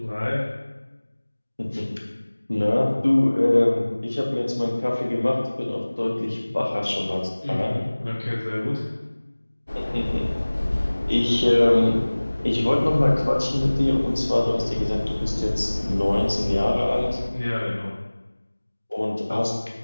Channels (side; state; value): both; inverted; correlation -1.00